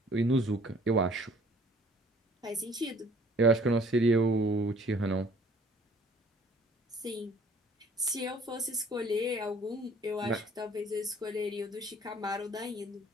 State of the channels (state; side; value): normal; both; correlation 0.55